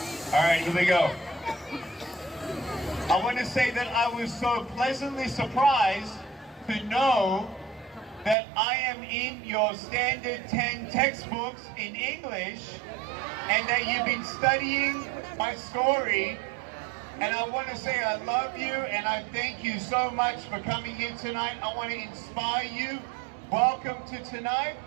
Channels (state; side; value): drops out; left; at 8.3 s